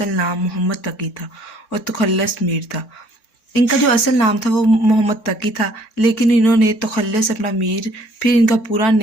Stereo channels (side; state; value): right; late; 3.6 ms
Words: नाम मोहम्मद तकी था और तखल्लस मीर था। इनका जो असल नाम था वो मोहम्मद तकी था, लेकिन इन्होंने तखल्लस अपना मीर, फिर इनका पूरा